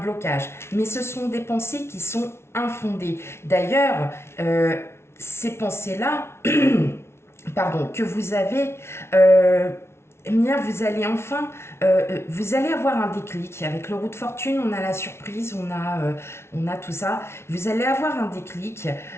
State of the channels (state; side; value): late; right; 0.12 ms